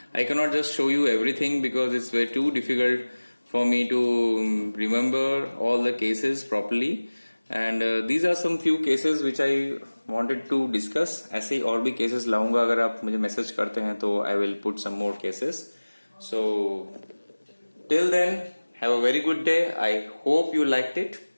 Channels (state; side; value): inverted; both; correlation -1.00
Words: I cannot just show you everything because it's way too difficult for me to remember all the cases properly. And these are some few cases which I wanted to discuss. ऐसे ही और भी cases लाऊंगा, अगर आप मुझे message करते हैं तो I will put some more cases. So till then, have a very good day. I hope you liked it.